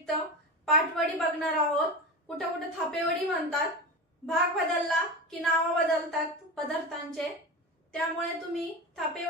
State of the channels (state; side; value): normal; both; correlation 0.24